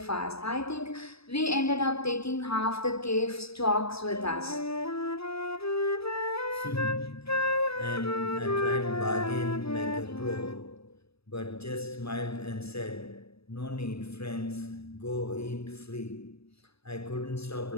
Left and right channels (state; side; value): late; right; 0.77 ms